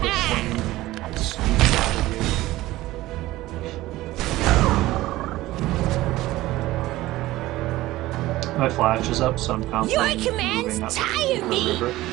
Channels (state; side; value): quieter; left; 17.2 dB